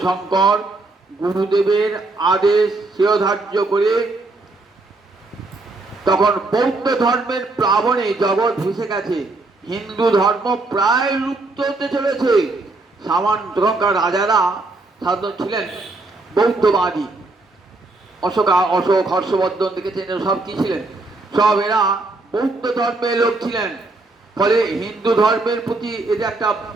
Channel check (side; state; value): left; quieter; 3.2 dB